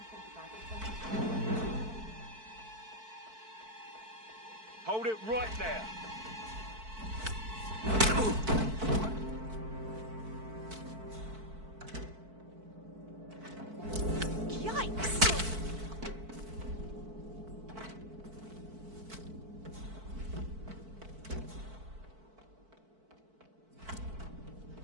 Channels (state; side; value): late; left; 4.5 ms